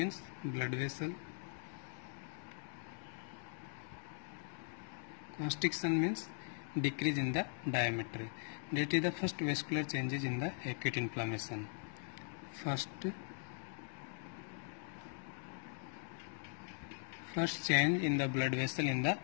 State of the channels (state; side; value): silent; right; 51 dB below the other